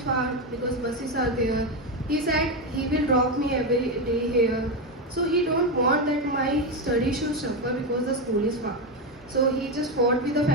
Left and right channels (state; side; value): normal; both; correlation 0.10